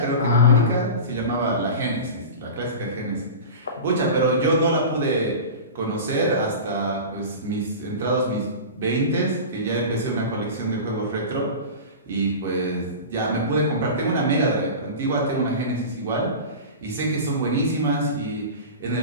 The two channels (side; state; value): both; inverted; correlation -0.31